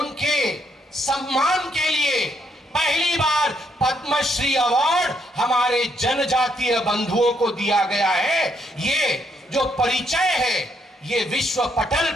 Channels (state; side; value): normal; both; correlation 0.74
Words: सम्मान के लिए पहली बार पद्मश्री अवार्ड हमारे जनजातीय बंधुओं को दिया गया है। ये जो परिचय है ये विश्व पटल